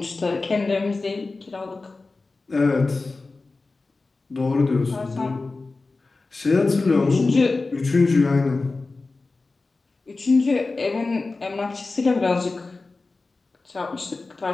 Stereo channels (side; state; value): right; quieter; 3.6 dB